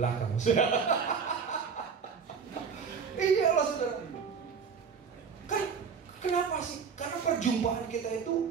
Iya Allah, saudara. Kan kenapa sih? Karena perjumpaan kita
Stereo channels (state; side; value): quieter; left; 6.1 dB